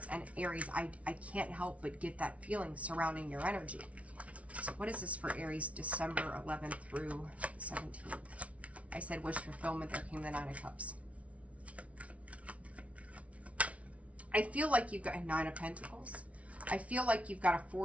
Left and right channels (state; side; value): late; left; 0.065 ms